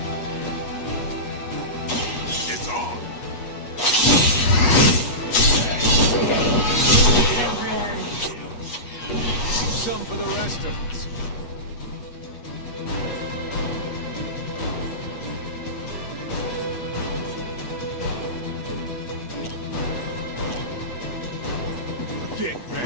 It's on. Some for the rest of us. Get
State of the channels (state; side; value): late; right; 8.4 ms